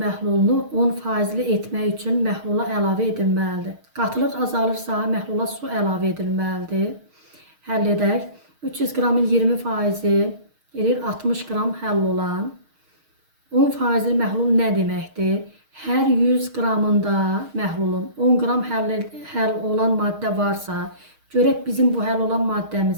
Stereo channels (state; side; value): late; left; 6.4 ms